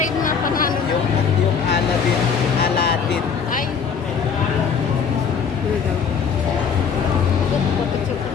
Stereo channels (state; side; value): quieter; right; 6.4 dB